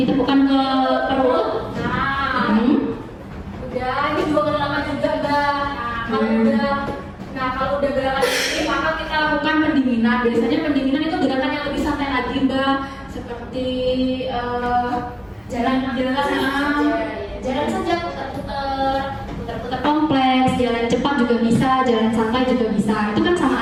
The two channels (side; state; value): both; identical; correlation 1.00